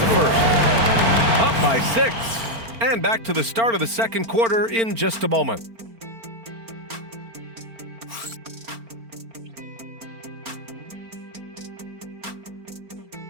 first. Up by 6. And back to the start of the second quarter in just a moment.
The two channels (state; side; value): late; left; 4.4 ms